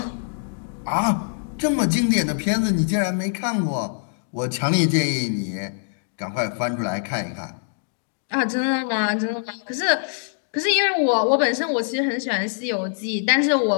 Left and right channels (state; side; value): silent; right; digital silence